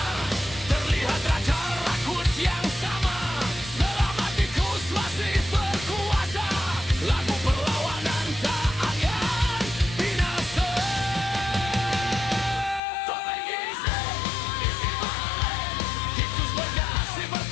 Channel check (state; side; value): drops out; right; at 12.8 s